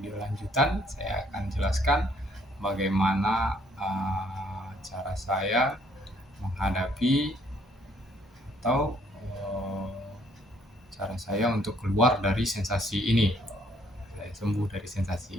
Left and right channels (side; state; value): both; normal; correlation 0.65